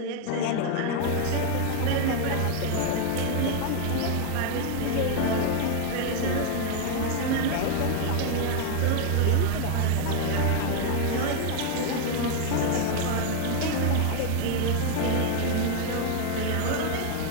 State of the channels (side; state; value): both; different; correlation 0.00